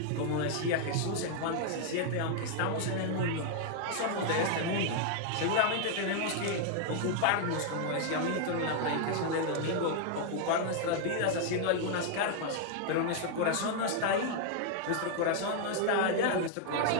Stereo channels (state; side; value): different; both; correlation 0.00